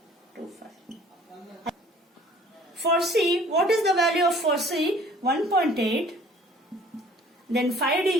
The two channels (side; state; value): both; normal; correlation 0.53